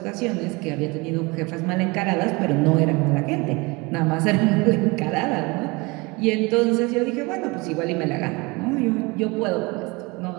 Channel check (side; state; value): left; quieter; 25.7 dB